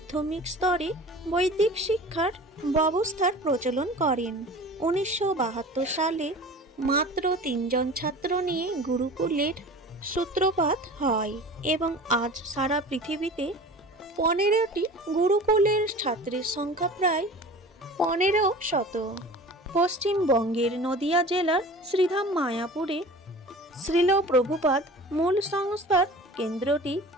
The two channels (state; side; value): normal; both; correlation 0.39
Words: স্তরে বৈদিক শিক্ষার ব্যবস্থার প্রচলন করেন। 1972 সালে মাত্র 3 জন ছাত্র নিয়ে গুরুকুলের সূত্রপাত হয় এবং আজ সারা পৃথিবীতে 15টি গুরুকুলের ছাত্রের সংখ্যা প্রায় 1500। পশ্চিমবঙ্গের নদিয়া জেলার শ্রীধাম মায়াপুরে শ্রীল প্রভুপাদ মূল সংস্থার কেন্দ্রটি